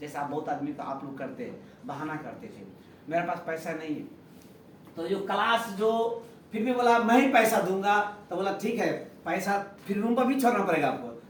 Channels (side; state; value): both; identical; correlation 1.00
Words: बहुत आदमी तो आप लोग करते हैं, बहाना करते थे। मेरे पास पैसा नहीं है, तो जो क्लास जो फिर भी बोला मैं ही पैसा दूंगा, तो बोला ठीक है पैसा, फिर रूम पर भी छोड़ना पड़ेगा आपको।